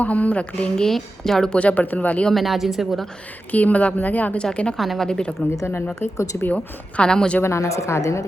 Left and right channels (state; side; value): normal; both; correlation 0.92